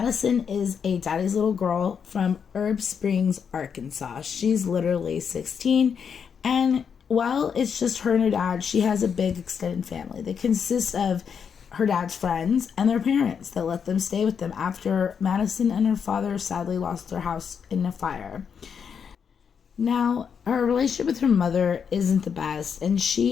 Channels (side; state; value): right; quieter; 6.9 dB